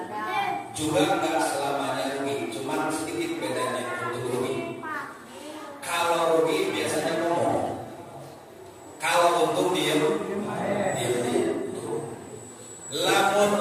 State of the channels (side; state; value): both; identical; correlation 1.00